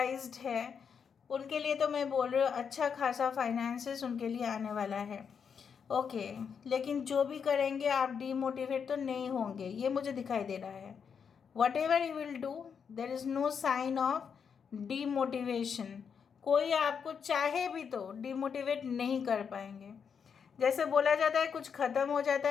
है उनके लिए तो मैं बोल रही हूँ अच्छा खासा फाइनेंसेस उनके लिए आने वाला है. ओके, लेकिन जो भी करेंगे आप डीमोटिवेट तो नहीं होंगे, ये मुझे दिखाई दे रहा है. Whatever you will do there is no sign of demotivation. कोई आपको चाहे भी तो डीमोटिवेट नहीं कर पाएंगे. जैसे बोला जाता है कुछ ख़त्म हो जाता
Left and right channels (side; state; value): right; quieter; 6.7 dB